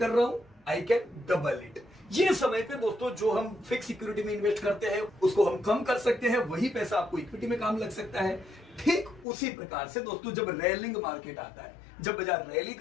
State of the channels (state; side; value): drops out; right; at 9.2 s